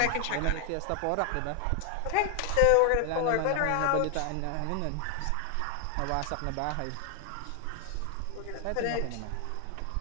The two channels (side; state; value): both; different; correlation 0.00